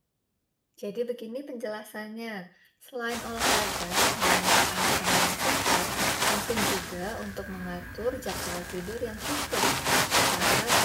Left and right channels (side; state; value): both; identical; correlation 1.00